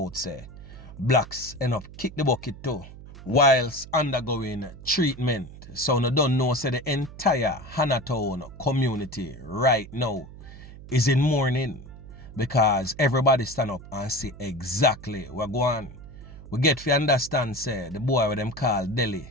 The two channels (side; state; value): right; noise; hum, 16 dB below the sound